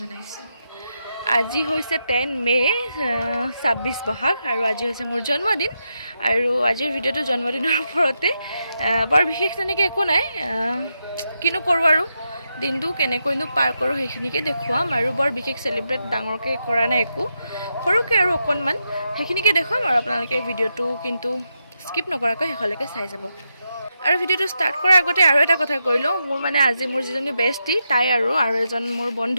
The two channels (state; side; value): inverted; both; correlation -0.85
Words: জনাইছো। আজি হৈছে 10 মে 26 বহাগ আৰু আজি হৈছে মোৰ জন্মদিন আৰু আজিৰ ভিডিঅ'টো জন্মদিনৰ ওপৰতে বৰ বিশেষ তেনেকৈ একো নাই কিনো কৰো আৰু দিনটো কেনেকৈনো পাৰ কৰো সেইখিনিকে দেখুৱাম আৰু বৰ বিশেষ সেলিব্ৰেট ডাঙৰকৈ কৰা নাই একো সৰুকে আৰু অকণমান সেইখিনিকে দেখুৱাম আৰু আপোনালোকে ভিডিঅ'টো কিন্তু স্কিপ নকৰাকৈ শেষলৈকে চাই যাব আৰু ভিডিঅ'টো ষ্টাৰ্ট কৰাৰ আগতে আৰু এটা কথা কৈ লওঁ মোৰ মানে আজি মোৰ যিজনী বেষ্টি তাই আৰু এজন মোৰ